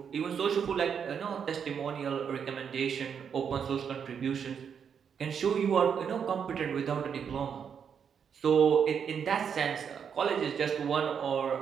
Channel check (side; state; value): left; quieter; 7.3 dB